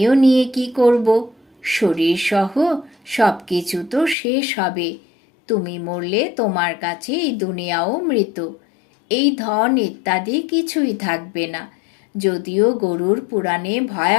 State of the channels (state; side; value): drops out; right; at 4.2 s